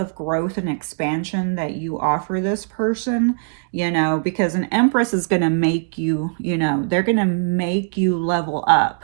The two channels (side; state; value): left; silent; digital silence